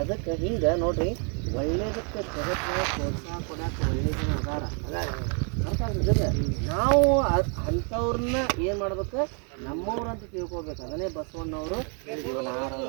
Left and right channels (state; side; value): quieter; left; 39.8 dB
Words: ಅದಕ್ಕೆ ಹಿಂಗೆ ನೋಡ್ರಿ, ಒಳ್ಳೇದಕ್ಕೆ ಜಗತ್ತಿನ ಪ್ರೋತ್ಸಾಹ ಕೊಡೋಕೆ ಒಳ್ಳೆ ಜನ ಅದಾರ ಅರ್ಥ ಆಗ್ತದೆ. ನಾವು ಅಂಥವ್ರನ್ನ ಏನು ಮಾಡ್ಬೇಕು, ನಮ್ಮವ್ರಂತ ತಿಳ್ಕೊಬೇಕು. ಅದನ್ನೇ ಬಸವಣ್ಣವರು ಇವನಾರವ